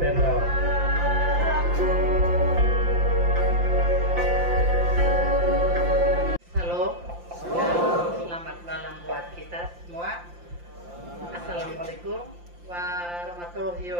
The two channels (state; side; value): late; left; 5.7 ms